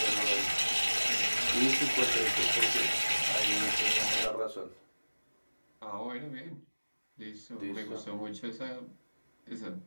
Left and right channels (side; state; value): both; inverted; correlation -1.00